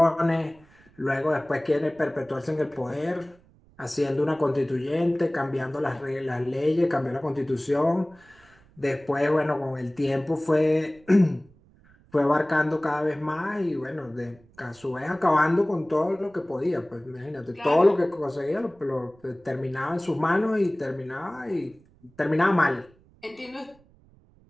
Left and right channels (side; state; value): right; noise; rumble, 29 dB below the sound